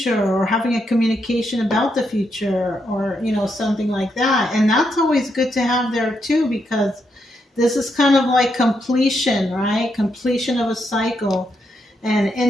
or having a communication about the future, or, something like that. And that's always good to have there too, because this is kind of like completion, right? Completion of a cycle. And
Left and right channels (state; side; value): normal; both; correlation 0.80